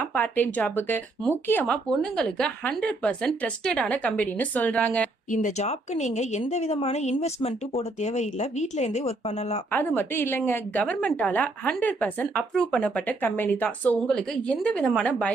பார்ட் டைம் ஜாபுக்கு முக்கியமா பொண்ணுங்களுக்கு 100% ட்ரஸ்டடான கம்பெனின்னு சொல்றாங்க. இந்த ஜாப்க்கு நீங்க எந்த விதமான இன்வெஸ்ட்மெண்ட்டும் போட தேவையில்லை. வீட்ல இருந்தே ஒர்க் பண்ணலாம். அது மட்டும் இல்லைங்க, கவர்மெண்டால 100% அப்ரூவ் பண்ணப்பட்ட கம்பெனி தான். சோ உங்களுக்கு எந்த விதமான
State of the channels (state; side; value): quieter; left; 3.1 dB